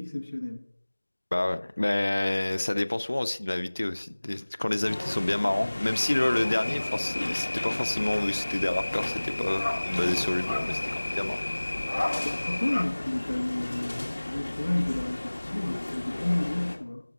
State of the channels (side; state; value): both; inverted; correlation -1.00